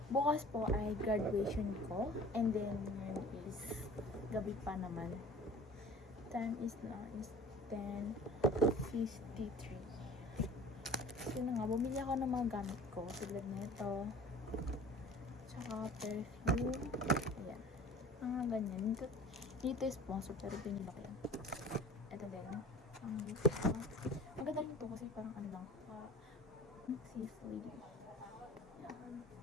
Bukas po ay graduation ko. And then, yun is gabi pa naman. Time is now is 10:53. So na nga, bumili ako ng mga gamit ko. Tulad nito. Tsaka perfume. Ayan. Mga ganyan. Dito is sponsor pero pinili ko yan. Ito din. Maganda rin ito kasi parang ano lang. Safe lady. Yan.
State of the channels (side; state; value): both; normal; correlation 0.44